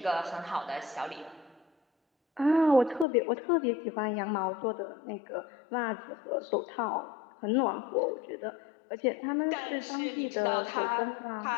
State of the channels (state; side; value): drops out; right; at 3.1 s